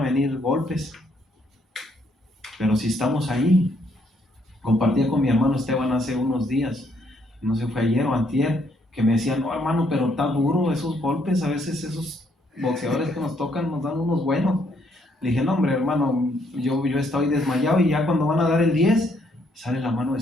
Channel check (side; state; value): both; normal; correlation 0.70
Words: venir golpes, pero si estamos ahí, compartía con mi hermano Esteban hace unos días, no sé, fue ayer o antier, que me decía, no hermano, pero está duro esos golpes, a veces esos boxeadores que nos tocan nos dan unos buenos. Le dije, no hombre hermano, yo estoy desmayado y ya cuando van a dar el 10, sale la mano del